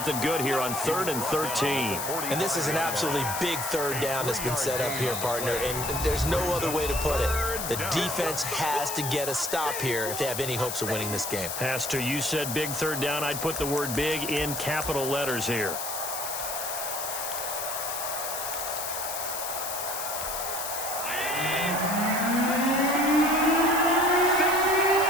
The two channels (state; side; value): noise; left; hiss, 5 dB below the sound